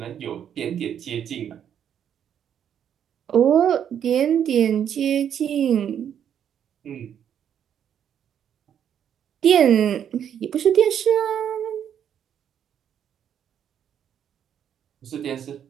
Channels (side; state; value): left; quieter; 9.1 dB